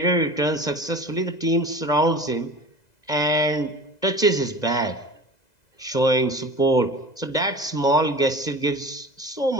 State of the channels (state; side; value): late; right; 2.0 ms